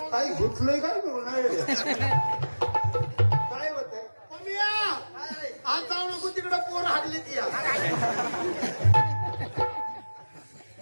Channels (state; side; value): inverted; both; correlation -1.00